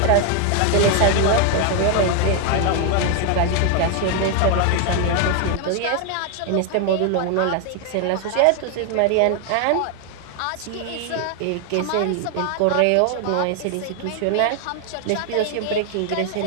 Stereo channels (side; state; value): both; different; correlation 0.00